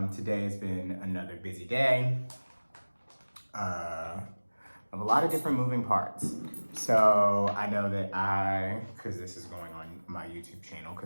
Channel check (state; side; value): inverted; both; correlation -1.00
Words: Today has been another busy day of a lot of different moving parts. So I know that because this is going on my YouTube channel,